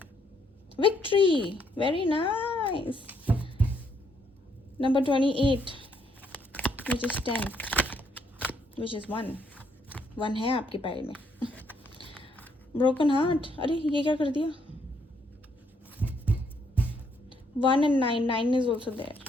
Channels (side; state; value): both; normal; correlation 0.71